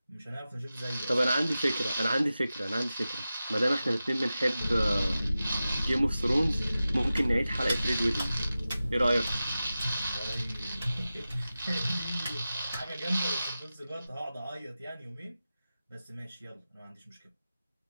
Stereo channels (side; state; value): both; inverted; correlation -0.94